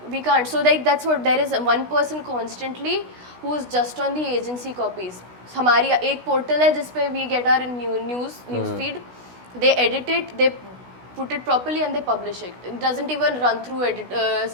we can't. So like that's what, there is one person constantly who is just on the agency copies. हमारी एक portal है जिसपे we get our news feed. They edit it, they put it properly, and they publish it. It doesn't even run through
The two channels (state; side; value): late; left; 16 ms